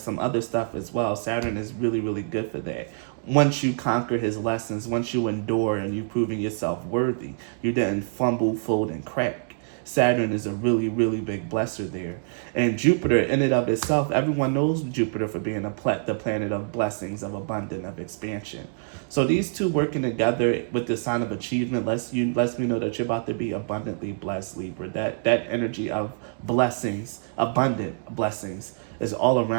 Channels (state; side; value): silent; left; digital silence